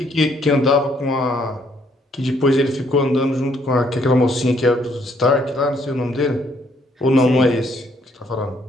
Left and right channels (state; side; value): normal; both; correlation 0.68